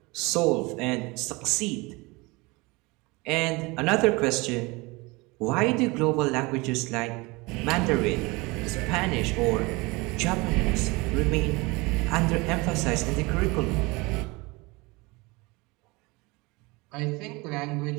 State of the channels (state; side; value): quieter; left; 24.8 dB